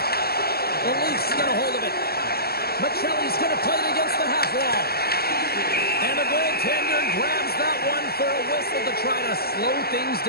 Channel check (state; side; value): late; right; 0.45 ms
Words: it. The Leafs get a hold of it. Michelli's going to play it against the half wall. And the goaltender grabs that one for a whistle to try to slow things